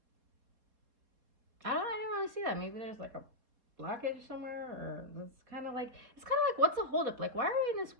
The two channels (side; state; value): left; late; 4.1 ms